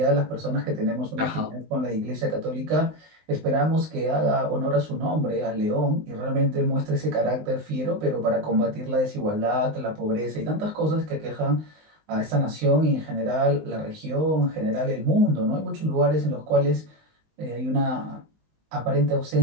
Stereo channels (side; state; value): left; late; 19 ms